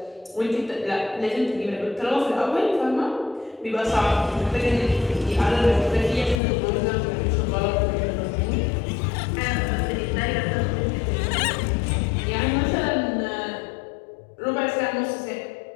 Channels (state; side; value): drops out; right; at 6.4 s